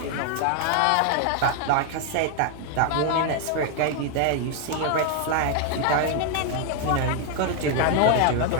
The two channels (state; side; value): different; both; correlation 0.00